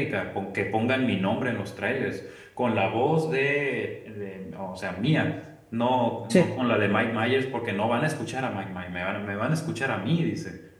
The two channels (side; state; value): both; identical; correlation 1.00